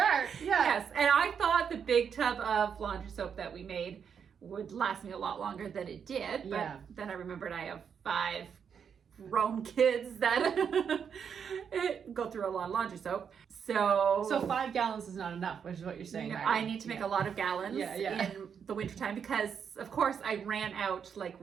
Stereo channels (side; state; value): left; quieter; 7.2 dB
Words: Yeah. Yes, and I thought the big tub of laundry soap that we made would last me a lot longer than it did. But then I remembered I have 5 grown kids that go through a lot of laundry soap. So 5 gallons is not enough, which is what you're saying. I need to make a lot of gallons in the wintertime because, of course, I ran out like